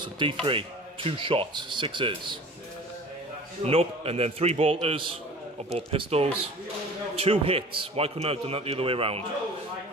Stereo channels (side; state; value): both; normal; correlation 0.42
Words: So D3, 2 shots, 6s. Nope, and then 3 bolters or bolt pistols, 2 hits. Why couldn't I have done that the other way around?